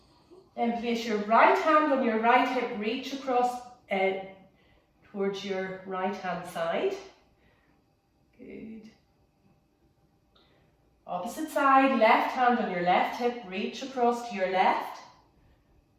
Then place your right hand on your right hip, reach across towards your right hand side. Good. Opposite side, left hand on your left hip, reach across to your left.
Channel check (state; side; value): identical; both; correlation 1.00